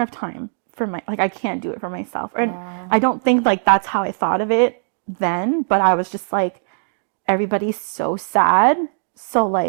time for I can't do it for myself. And I don't think like that's how I thought of it then, but I was just like, everybody's so sad, so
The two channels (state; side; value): silent; left; digital silence